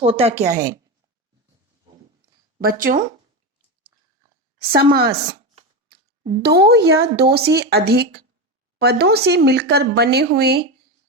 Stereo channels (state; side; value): normal; both; correlation 0.16